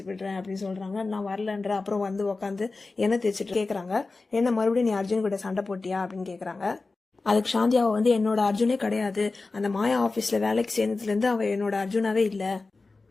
விடுறேன் அப்படின்னு சொல்றாங்க. நான் வரலன்ற. அப்புறம் வந்து உட்காந்து எண்ணெய் தேய்ச்சிட்டு கேக்குறாங்க, என்ன மறுபடியும் நீ அர்ஜுன் கிட்ட சண்டை போட்டியா அப்படின்னு கேக்குறாங்க. அதுக்கு சாந்தியாவை வந்து என்னோட அர்ஜுனே கிடையாது, அந்த மாயா ஆபீஸ்ல வேலைக்கு சேர்ந்ததுல இருந்து அவ என்னோட அர்ஜுனாவே இல்ல.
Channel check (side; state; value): right; quieter; 3.7 dB